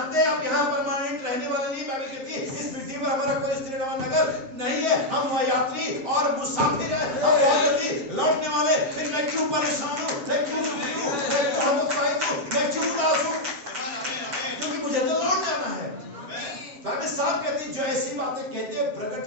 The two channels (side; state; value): left; late; 7.4 ms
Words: हैं आप यहाँ परमानेंट रहने वाले नहीं। बाइबल कहती है इस पृथ्वी पर हमारा कोई स्थिर नगर नहीं है, हम यात्री और मुसाफिर हैं, हम बहुत जल्दी लौटने वाले। फिर मैं क्यों परेशान हूँ, मैं क्यों दुखी हूँ, मैं क्यों हतोत्साहित हूँ, मैं क्यों उदास हूँ? क्योंकि मुझे तो लौट जाना है। बाइबल साफ कहती है जो ऐसी बातें कहते हैं